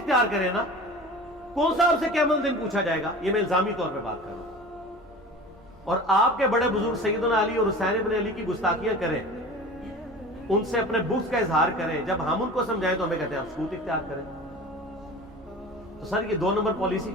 کریں نا. کون سا آپ سے قیامت دن پوچھا جائے گا؟ یہ میں الزامی طور پہ بات کر رہا ہوں. اور آپ کے بڑے بزرگ سیدنا علی اور حسین ابن علی کی گستاخیاں کریں, ان سے اپنے بغض کا اظہار کریں, جب ہم ان کو سمجھائیں تو ہمیں کہتے ہیں آپ سکوت اختیار کریں. تو سر یہ 2 نمبر پالیسی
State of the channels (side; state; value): both; normal; correlation 0.37